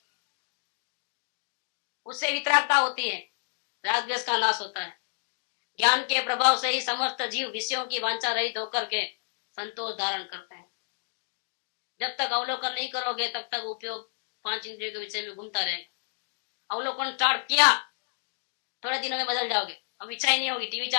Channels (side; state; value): right; silent; digital silence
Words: उससे वितरागता होती है, राग द्वेष का नाश होता है। ज्ञान के प्रभाव से ही समस्त जीव विषयों की वांछा रहित होकर के संतोष धारण करते हैं। जब तक अवलोकन नहीं करोगे तब तक उपयोग 5 इंद्रियों के विषय में घूमता रहेगा। अवलोकन स्टार्ट किया, थोड़े दिनों में बदल जाओगे। अब इच्छा ही नहीं होगी, टीवी